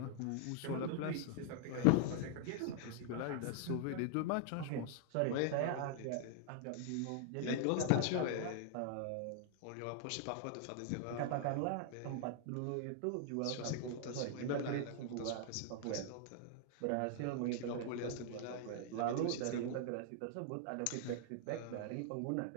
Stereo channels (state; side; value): different; both; correlation 0.00